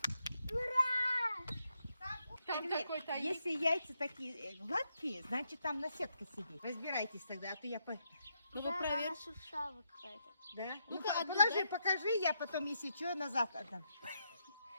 Там такой тайник. Если яйца такие гладкие, значит там наседка сидит. Разбирайтесь тогда, а то я... Ну вы проверьте. шуршава какая-то. Да? Ну-ка, Ну, одну положи, дай. покажи, я потом, если что, назад отдам.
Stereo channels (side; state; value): both; inverted; correlation -0.80